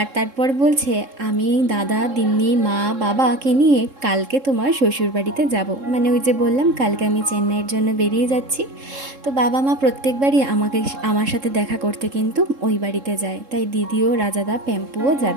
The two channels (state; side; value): late; left; 3.7 ms